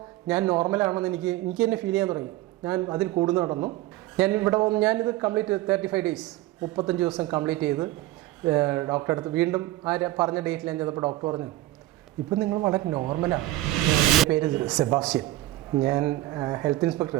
ഞാൻ നോർമലാണെന്ന് എനിക്ക് തന്നെ ഫീൽ ചെയ്യാൻ തുടങ്ങി. ഞാൻ അതിൽ കൂടുന്നു നടന്നു. ഞാനിത് കംപ്ലീറ്റ് 35 ഡേയ്സ് 35 ദിവസം കംപ്ലീറ്റ് ചെയ്ത് ഡോക്ടറെ അടുത്ത് വീണ്ടും പറഞ്ഞ ഡേറ്റിൽ ഞാൻ ചെന്നപ്പോൾ ഡോക്ടർ പറഞ്ഞു ഇപ്പം നിങ്ങൾ വളരെ നോർമലാണ്. എൻ്റെ പേര് സെബാസ്റ്റ്യൻ. ഞാൻ ഹെൽത്ത്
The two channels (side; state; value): left; quieter; 16.8 dB